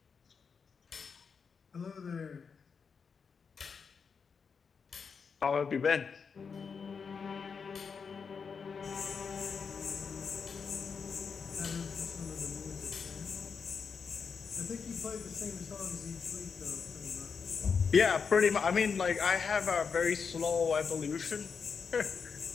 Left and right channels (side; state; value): right; quieter; 5.8 dB